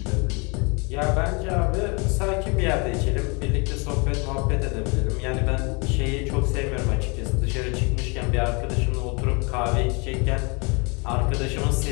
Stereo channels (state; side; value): quieter; right; 30.8 dB